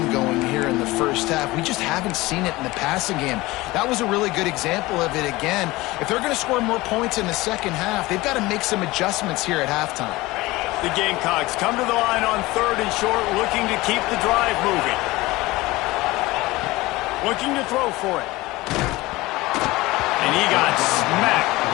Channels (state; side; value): quieter; right; 20.1 dB